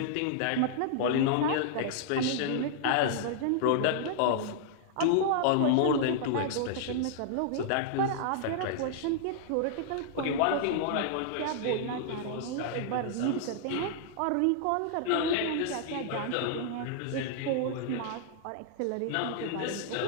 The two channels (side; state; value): both; different; correlation -0.01